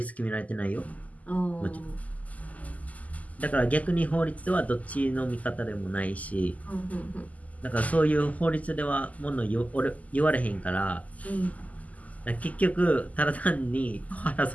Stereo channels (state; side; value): late; right; 0.075 ms